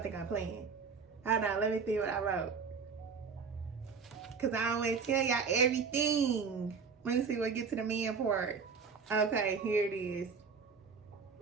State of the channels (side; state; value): left; quieter; 5.5 dB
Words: think I'm playing. Hold on. Let me see what I wrote. Because I don't want to tell y'all everything. Let me see what get to the man part. Okay. Here it is.